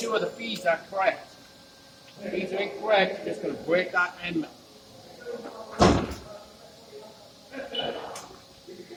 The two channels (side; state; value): both; identical; correlation 1.00